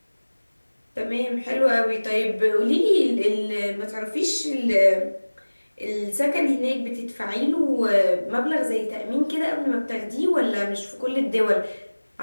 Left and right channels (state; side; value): inverted; both; correlation -1.00